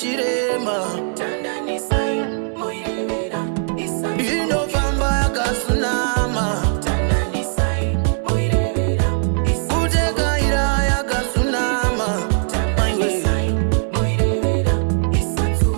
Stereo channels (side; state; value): left; silent; digital silence